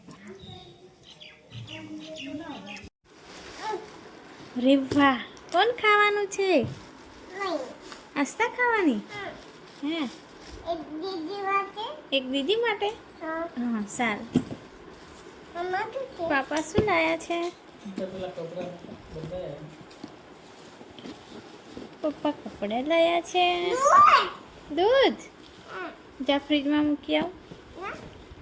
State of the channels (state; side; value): identical; both; correlation 1.00